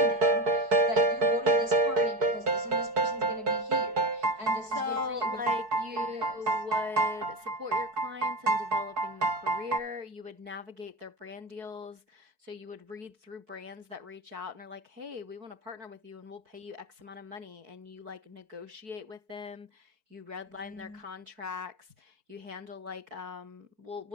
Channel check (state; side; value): late; left; 4.6 ms